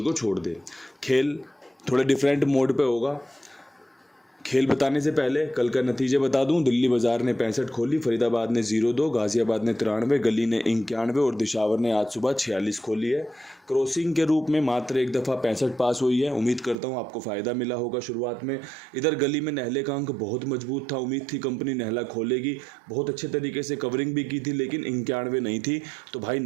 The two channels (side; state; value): left; drops out; at 16.8 s